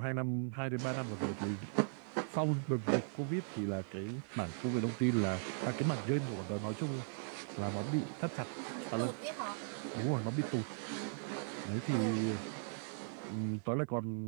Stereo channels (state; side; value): silent; left; 52 dB below the other